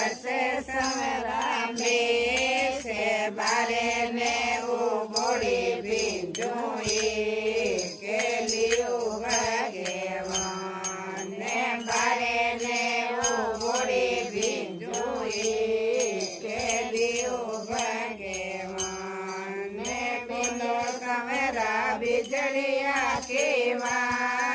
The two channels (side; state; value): both; identical; correlation 1.00